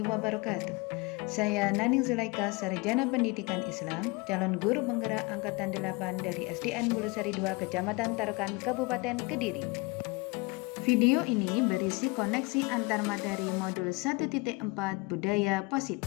wabarakatuh. Saya Naning Zulaika, Sarjana Pendidikan Islam, calon guru penggerak Angkatan 8 dari SDN Bulusari 2, Kecamatan Tarukan, Kabupaten Kediri. Video ini berisi koneksi antar materi modul 1.4 Budaya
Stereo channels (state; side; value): quieter; right; 26.2 dB